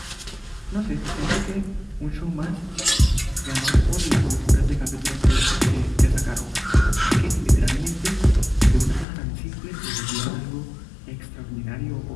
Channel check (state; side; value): drops out; right; at 9.1 s